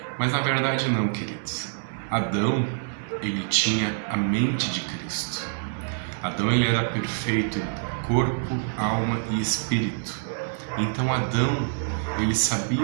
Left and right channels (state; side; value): silent; left; digital silence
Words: mas na verdade não, queridos. Adão, ele tinha a mente de Cristo. Adão, ele era perfeito em corpo, alma e espírito. Então Adão, ele